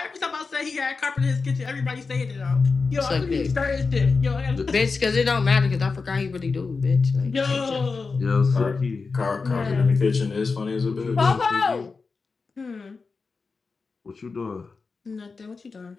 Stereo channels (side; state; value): right; quieter; 4.5 dB